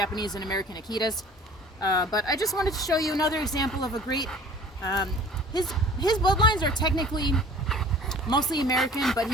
and American Akitas. But I just wanted to show you another example of a great, his bloodlines are technically mostly American, but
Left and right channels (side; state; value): both; normal; correlation 0.47